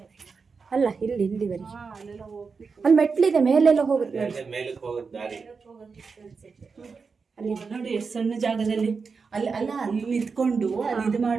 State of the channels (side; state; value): left; quieter; 5.0 dB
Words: ಅಲ್ಲ ಇಲ್ಲಿವರೆಗೆ ಅಲ್ಲೆಲ್ಲ ಹೋಗ್ತಿತ್ತು. ಅಲ್ಲಿ ಮೆಟ್ಲಿದೆ, ಮೇಲೆಲ್ಲ ಹೋಗುತ್ತೆ. ಮೇಲಕ್ಕೆ ಹೋಗೋದು ದಾರಿ. ಅಲ್ಲಿ ನೋಡಿ ಎಷ್ಟು ಸಣ್ಣ ಜಾಗದಲ್ಲಿ ಅಲ್ಲಿ ನಿಂತ್ಕೊಂಡು ಅಲ್ಲಿ ಇದು